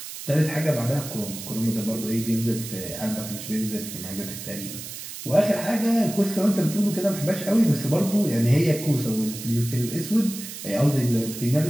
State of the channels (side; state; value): right; noise; hiss, 10 dB below the sound